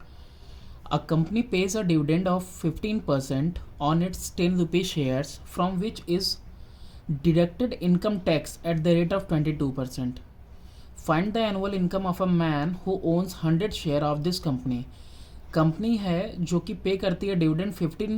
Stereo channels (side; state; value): both; identical; correlation 1.00